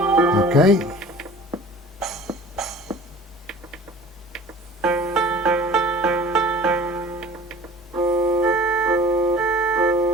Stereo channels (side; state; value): both; normal; correlation 0.44